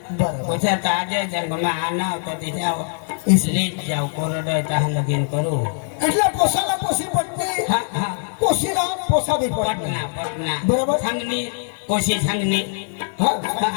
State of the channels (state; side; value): silent; right; 56 dB below the other